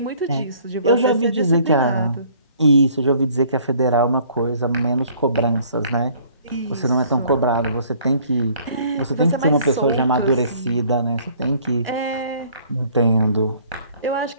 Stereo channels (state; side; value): inverted; both; correlation -0.57